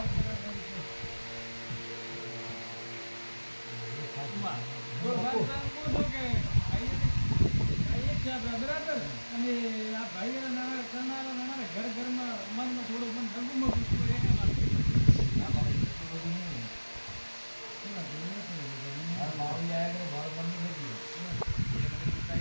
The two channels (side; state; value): both; inverted; correlation -1.00